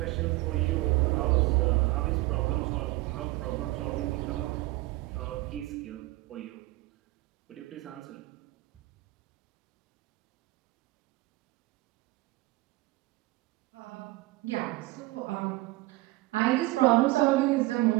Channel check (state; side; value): quieter; left; 20.2 dB